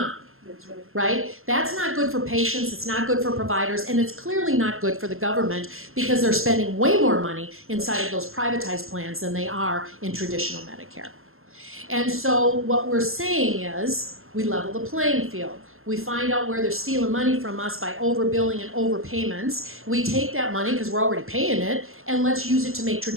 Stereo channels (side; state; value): left; late; 0.61 ms